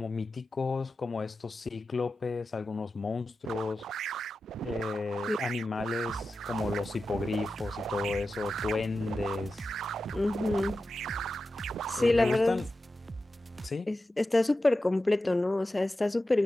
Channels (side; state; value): both; normal; correlation 0.92